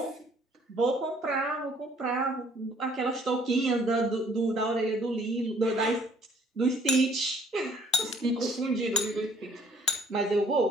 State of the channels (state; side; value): normal; both; correlation 0.59